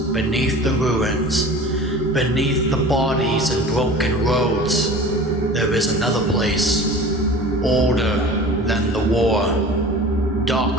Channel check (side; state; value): both; normal; correlation 0.39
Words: beneath the ruins, beneath the bodies and broken roads, there is another place, older than the war,